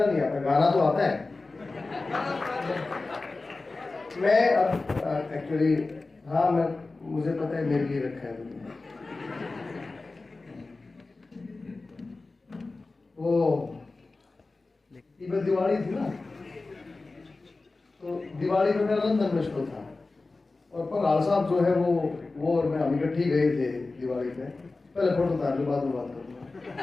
नहीं आता, गाना तो आता है। मैं अब एक्चुअली हाँ मैं मुझे पता है मेरे लिए रखा है तुमने। वो दिवाली थी ना, तो दिवाली पे मेरा लंदन में शो था और पंगाल साहब जो है वो और मैं हम इकट्ठे गए थे दिवाली पे। पहले फोटो उतार लो, बाद में बात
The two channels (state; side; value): quieter; right; 3.5 dB